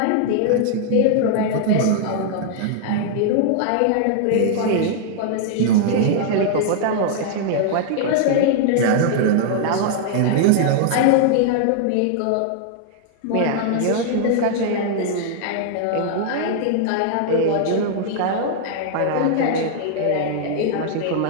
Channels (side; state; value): both; different; correlation -0.01